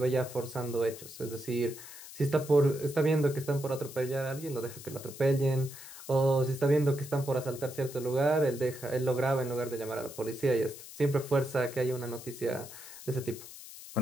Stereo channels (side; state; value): left; noise; hiss, 14 dB below the sound